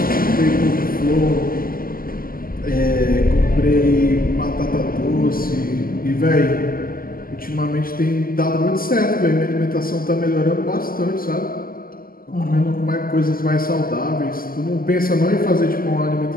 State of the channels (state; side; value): late; right; 0.42 ms